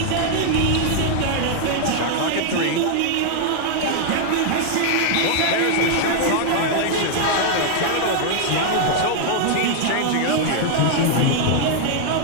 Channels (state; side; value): different; both; correlation 0.00